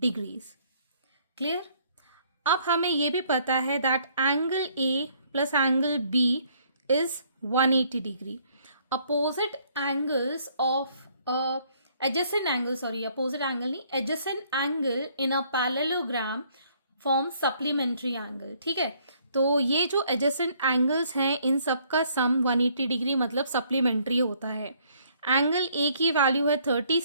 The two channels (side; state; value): both; inverted; correlation -0.64